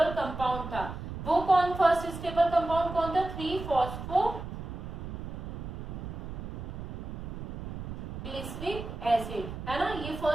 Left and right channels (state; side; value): noise; right; rumble, 8 dB below the sound